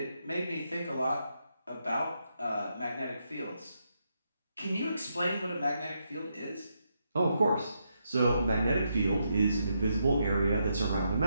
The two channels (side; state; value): both; inverted; correlation -0.81